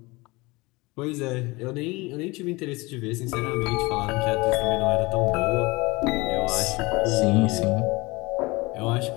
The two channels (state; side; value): quieter; right; 23.5 dB